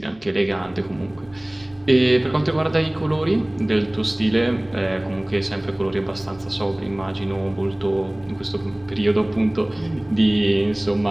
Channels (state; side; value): noise; right; rumble, 27 dB below the sound